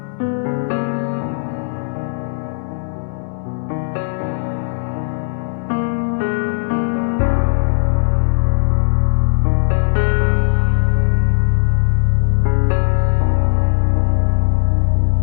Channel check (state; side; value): silent; right; digital silence